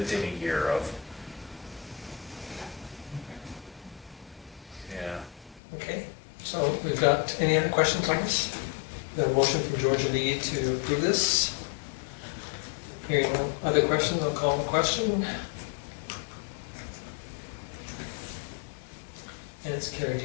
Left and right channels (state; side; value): drops out; right; at 5.6 s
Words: a year of. Yeah. Okay, so we've got, any other questions on this? The motion from Georgia Lee to approve this. Hearing no other questions, I'll call the question. And it's carried